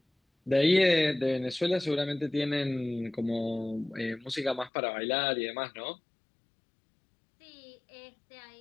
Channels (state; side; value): drops out; right; at 4.7 s